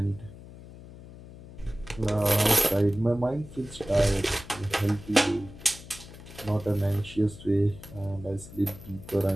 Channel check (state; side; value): noise; left; hum, 17 dB below the sound